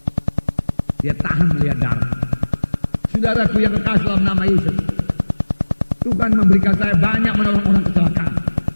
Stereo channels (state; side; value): inverted; both; correlation -1.00